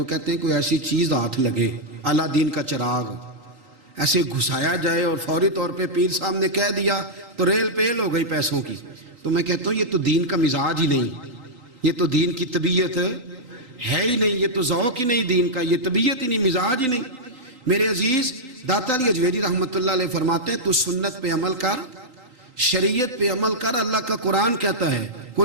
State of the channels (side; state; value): left; late; 3.8 ms